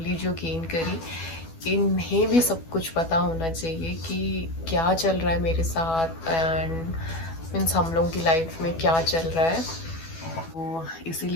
जो गेन करी, इन्हें भी सब कुछ पता होना चाहिए कि क्या चल रहा है मेरे साथ एंड मीन्स हम लोगों की लाइफ में क्या चल रहा है. तो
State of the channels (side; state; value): right; late; 12 ms